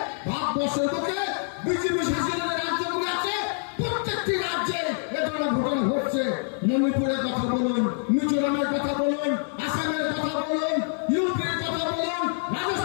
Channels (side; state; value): right; silent; digital silence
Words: ভারতবর্ষের বুকে বিজেপি শাসিত রাজ্যগুলো আছে প্রত্যেকটি রাজ্যে এ ধরনের ঘটনা ঘটছে। মণিপুরের কথা বলুন, মিজোরামের কথা বলুন, আসামের কথা বলুন, ইউপির কথা বলুন,